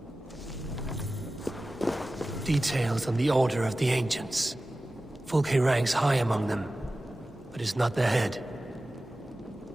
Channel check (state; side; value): normal; both; correlation 0.95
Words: Details on the Order of the Ancients. Fulke ranks high among them, but is not their head.